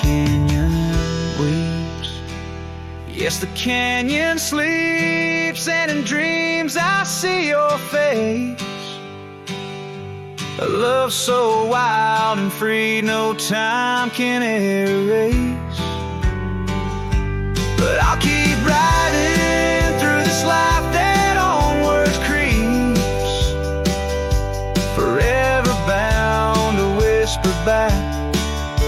weeps. Yes, the canyon sleeps, and in dreams I see your face. A love so wild and free, no time can erase. But I'll keep riding through this life that onward creeps, forever bound to whisper back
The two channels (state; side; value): identical; both; correlation 1.00